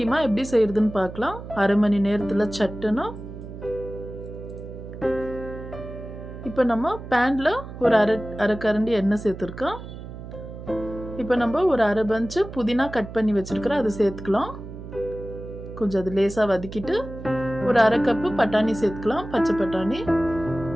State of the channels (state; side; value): noise; right; hum, 12 dB below the sound